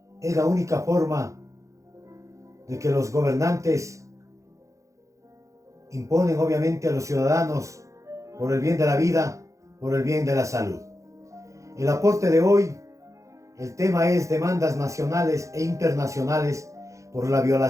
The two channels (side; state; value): left; late; 0.15 ms